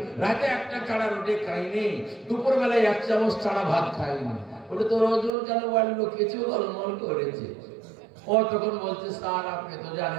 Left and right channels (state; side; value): drops out; left; at 5.4 s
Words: রাতে 1টা ছাড়া রুটি খাইনি, দুপুর বেলায় 1 চামচ ছাড়া ভাত খাইনি। বলে তোর ওজন কেন বাড়লো? কিছু গোলমাল করেছে। ও তখন বলছে, স্যার আপনি তো